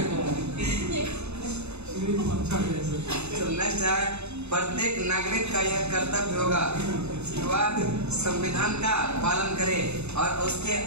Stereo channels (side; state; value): left; late; 0.81 ms